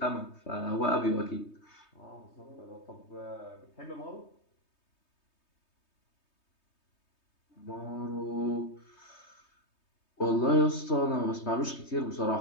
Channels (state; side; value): late; right; 3.2 ms